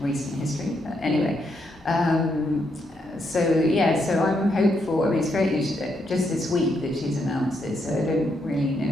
history. Anyway, so I'm hopeful. I mean, it's just this week that she's announced it, so I don't really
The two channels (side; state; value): both; normal; correlation 0.78